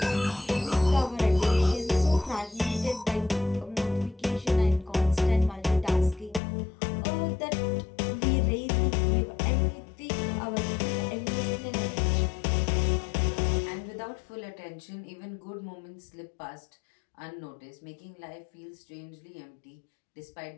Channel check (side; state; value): right; drops out; at 6.4 s